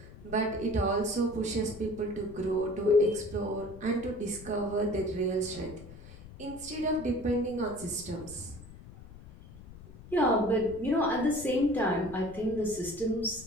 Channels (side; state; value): left; noise; rumble, 17 dB below the sound